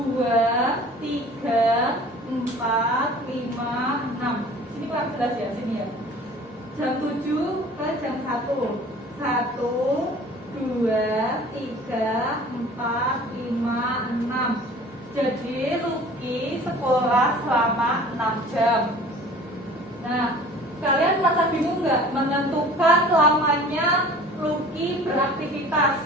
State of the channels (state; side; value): normal; both; correlation 0.46